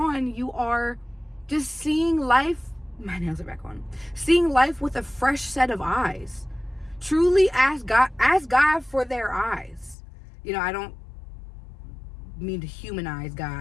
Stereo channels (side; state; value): right; drops out; at 10.0 s